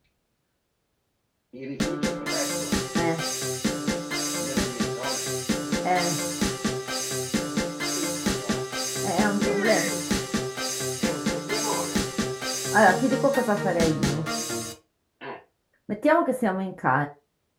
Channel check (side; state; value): both; identical; correlation 1.00